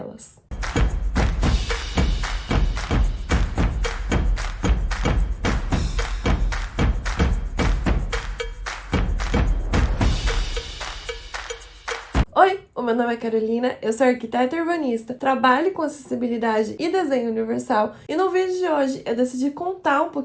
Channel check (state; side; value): identical; both; correlation 1.00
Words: Oi, o meu nome é Carolina, eu sou arquiteta urbanista, trabalho com acessibilidade e desenho universal e no vídeo de hoje eu decidi contar um